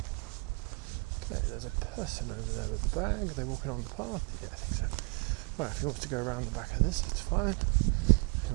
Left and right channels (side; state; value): left; quieter; 29.2 dB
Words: Okay, there's a person over there with the bag. Are they walking on the path? Yeah, I think so. Well, if he wants to go around the back of this, it's fine. If he